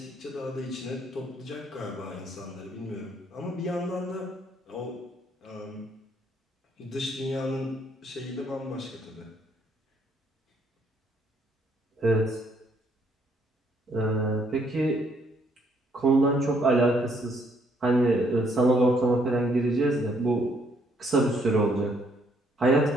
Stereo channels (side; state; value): both; normal; correlation 0.69